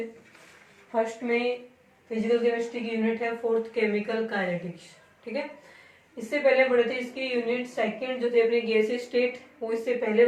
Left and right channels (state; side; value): identical; both; correlation 1.00